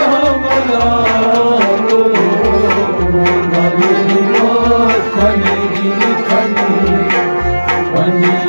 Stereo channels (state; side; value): inverted; both; correlation -1.00